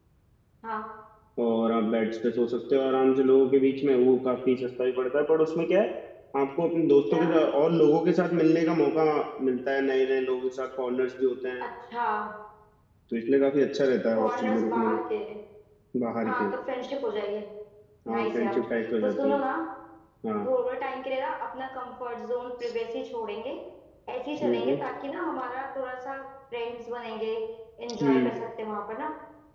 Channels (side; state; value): both; identical; correlation 1.00